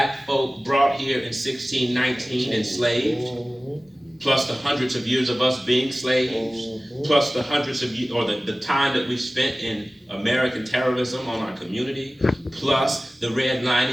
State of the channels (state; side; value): normal; both; correlation 0.97